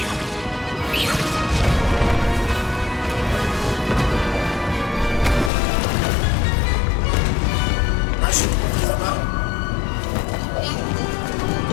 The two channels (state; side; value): drops out; right; at 5.5 s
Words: Na szybko chyba.